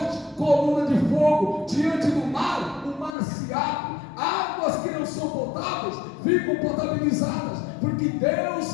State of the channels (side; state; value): right; drops out; at 3.1 s